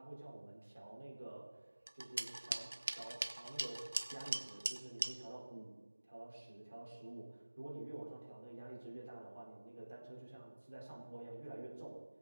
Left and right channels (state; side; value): inverted; both; correlation -1.00